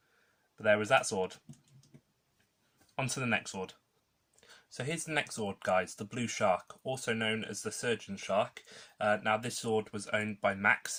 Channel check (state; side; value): identical; both; correlation 1.00